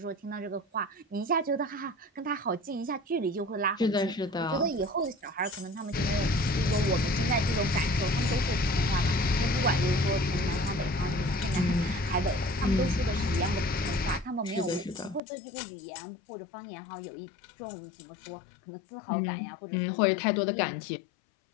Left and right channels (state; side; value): drops out; right; at 15.2 s